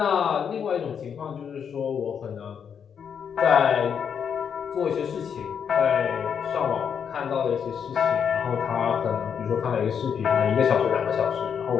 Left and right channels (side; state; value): right; quieter; 7.5 dB